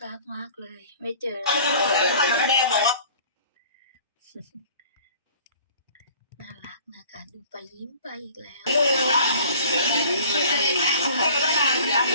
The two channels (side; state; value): both; inverted; correlation -0.49